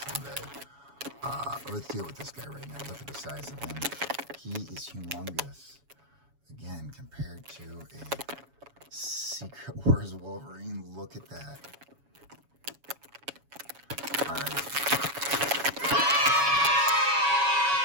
Let's deal with this guy right now. Look at the size of him. He is humongous. Again, compared to a Secret Wars Wolverine, look at that. All right.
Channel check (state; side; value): late; left; 7.1 ms